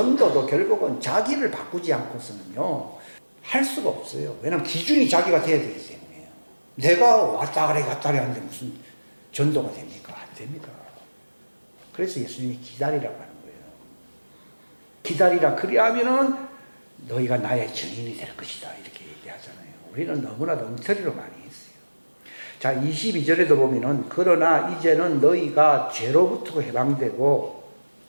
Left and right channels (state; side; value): inverted; both; correlation -1.00